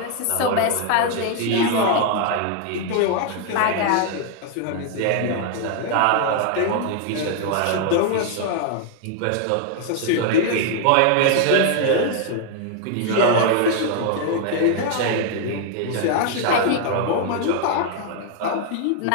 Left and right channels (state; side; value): different; both; correlation 0.00